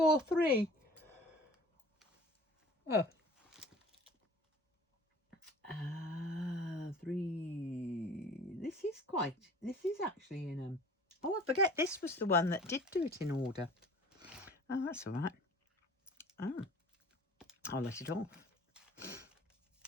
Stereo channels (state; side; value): normal; both; correlation 0.47